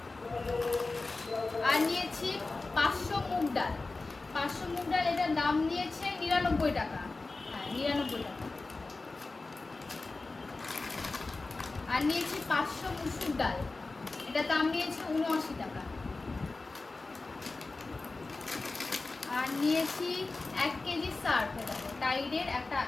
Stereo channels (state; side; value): quieter; right; 3.5 dB